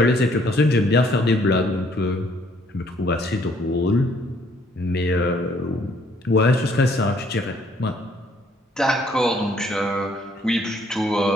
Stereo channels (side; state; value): both; normal; correlation 0.64